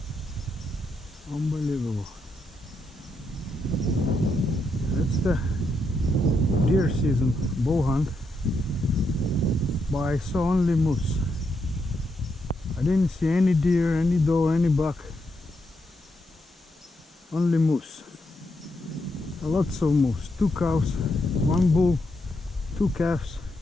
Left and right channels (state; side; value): normal; both; correlation 0.81